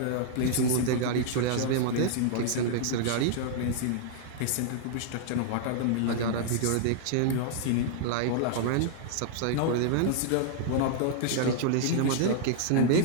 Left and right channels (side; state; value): both; different; correlation -0.01